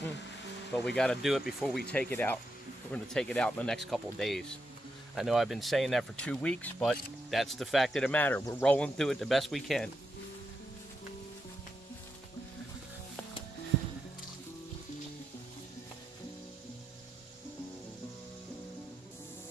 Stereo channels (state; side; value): normal; both; correlation 0.84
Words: but we got to do it before we take it out. We're going to take it out in the next couple of days. I know I've been saying that for 2 weeks, but that's the fact of the matter. We're rolling through it the best we can.